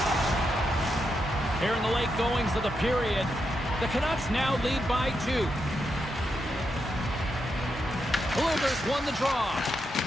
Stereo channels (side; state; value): both; normal; correlation 0.84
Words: Here in the late goings of the period, the Canucks now lead by 2. Bluegers won the draw.